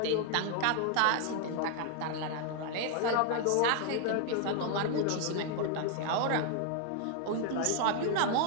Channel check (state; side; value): different; both; correlation 0.00